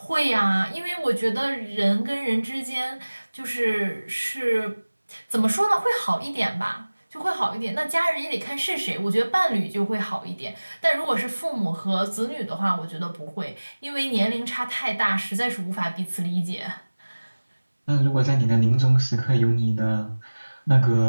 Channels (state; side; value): inverted; both; correlation -1.00